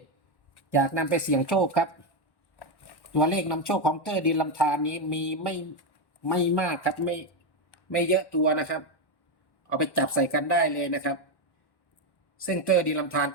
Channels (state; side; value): late; right; 1.1 ms